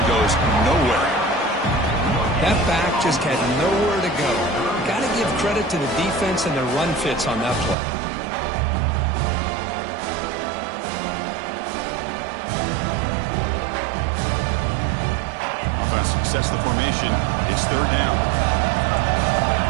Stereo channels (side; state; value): left; drops out; at 7.8 s